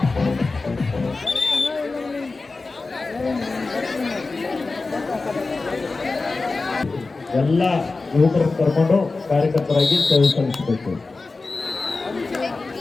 ಎಲ್ಲ ಯುವಕರನ್ನು ಕರ್ಕೊಂಡು ಕಾರ್ಯಕರ್ತರಾಗಿ ಸೇವೆ ಸಲ್ಲಿಸಬೇಕು.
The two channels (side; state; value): right; quieter; 3.7 dB